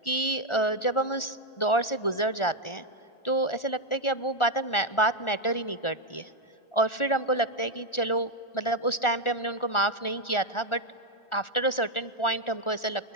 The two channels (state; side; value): late; right; 1.4 ms